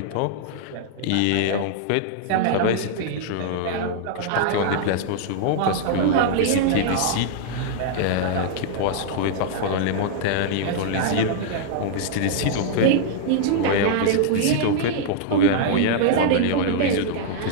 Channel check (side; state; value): both; different; correlation -0.01